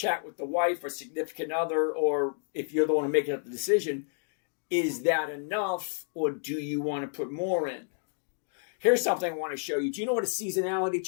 with the wife or significant other, or if you're the one making up the decision, is that enough, or do you want to put more in? Here's something I want to show you. Do you know what a seasonality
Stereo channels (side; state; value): right; silent; digital silence